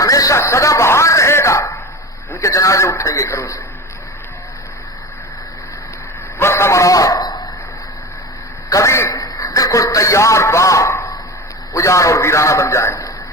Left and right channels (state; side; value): normal; both; correlation 0.29